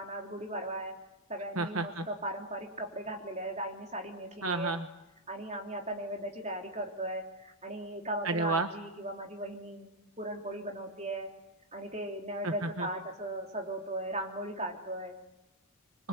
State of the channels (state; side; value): normal; both; correlation -0.01